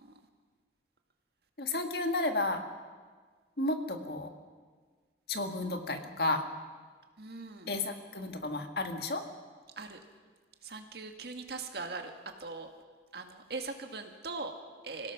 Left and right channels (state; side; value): normal; both; correlation -0.14